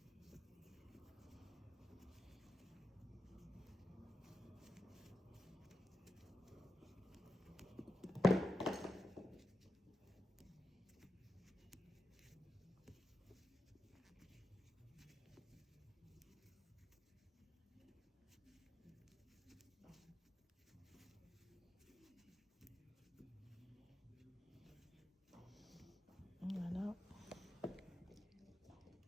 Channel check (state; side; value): normal; both; correlation 0.89